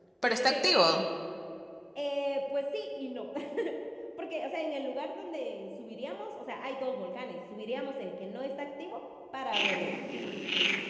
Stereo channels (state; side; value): identical; both; correlation 1.00